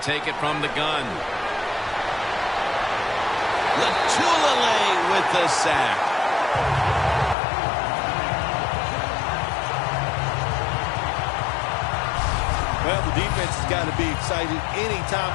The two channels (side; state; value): right; drops out; at 7.4 s